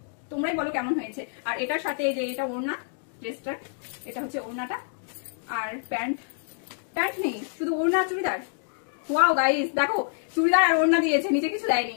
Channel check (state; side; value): silent; right; digital silence